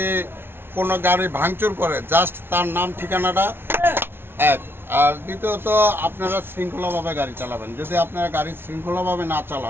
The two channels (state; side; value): late; left; 0.11 ms